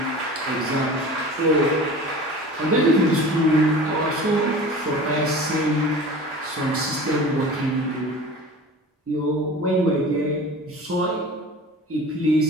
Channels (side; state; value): both; normal; correlation 0.38